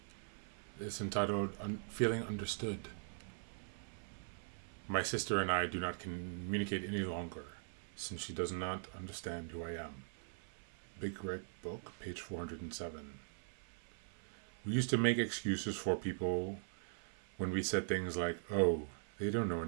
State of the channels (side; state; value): left; silent; 50 dB below the other